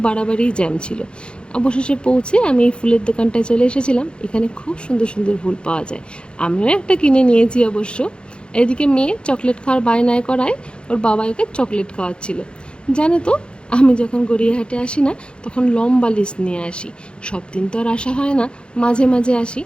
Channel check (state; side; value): late; right; 0.054 ms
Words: বাড়াবাড়িই জ্যাম ছিল। অবশেষে পৌঁছে আমি এই ফুলের দোকানটায় চলে এসেছিলাম। এখানে খুব সুন্দর সুন্দর ফুল পাওয়া যায়, আমিও একটা কিনে নিয়েছি অবশ্য। এদিকে মেয়ে চকলেট খাওয়ার বায়নায় করায় ওর বাবা ওকে চকলেট খাওয়াচ্ছিল। জানো তো, আমি যখন গড়িয়াহাটে আসি না, তখন লম্বা লিস্ট নিয়ে আসি। সব দিন তো আর আসা হয় না, মাঝে মাঝে আসি,